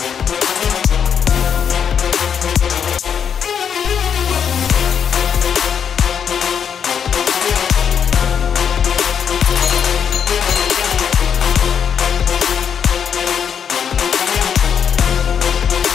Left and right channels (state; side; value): quieter; right; 7.7 dB